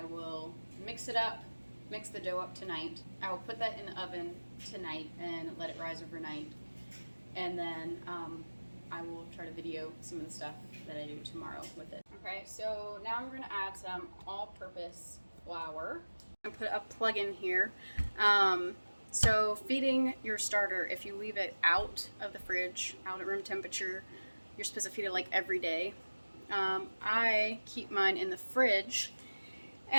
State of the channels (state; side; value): inverted; both; correlation -1.00